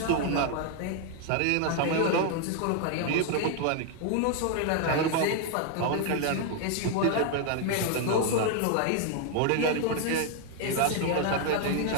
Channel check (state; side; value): different; both; correlation 0.00